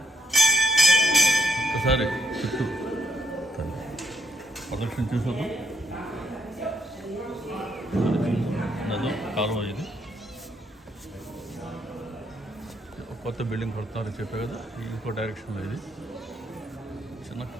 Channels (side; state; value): both; normal; correlation 0.74